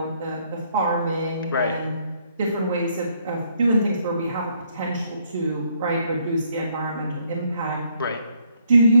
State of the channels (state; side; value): inverted; both; correlation -0.68